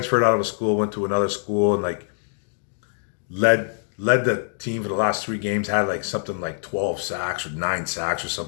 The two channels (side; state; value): right; silent; digital silence